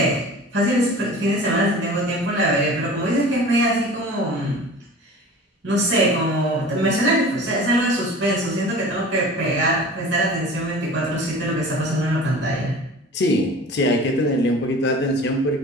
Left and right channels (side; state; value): both; normal; correlation 0.40